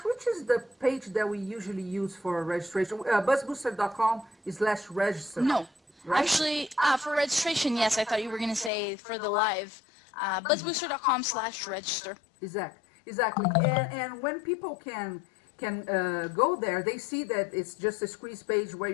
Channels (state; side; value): drops out; right; at 8.7 s